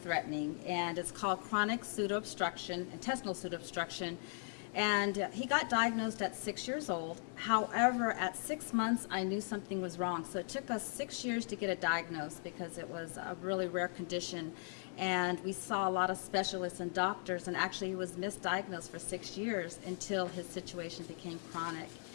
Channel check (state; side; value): silent; right; 52 dB below the other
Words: and it's called chronic pseudoobstruction, intestinal pseudoobstruction. And he got diagnosed at 6 years old. However, at 6 months, I knew something was wrong. So it took us 6 years to get it diagnosed because it was a really rare condition. And we saw a lot of specialists and doctors, and actually he was misdiagnosed for 6 years until his situation became chronic.